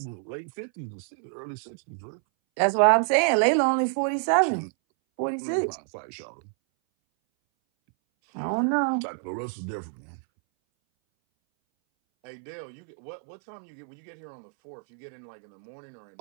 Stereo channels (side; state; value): left; silent; 59 dB below the other